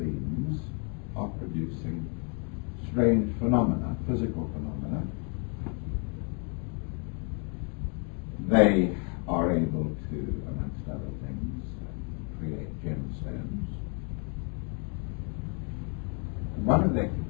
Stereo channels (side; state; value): right; quieter; 37.4 dB